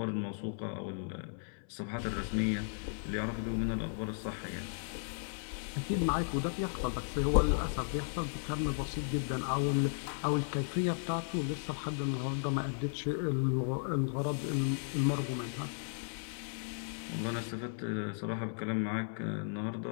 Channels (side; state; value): right; silent; 54 dB below the other